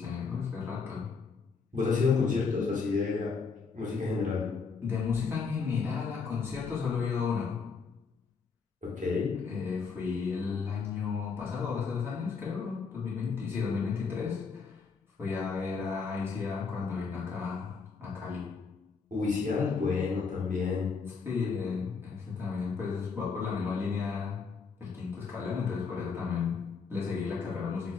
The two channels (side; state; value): right; quieter; 5.1 dB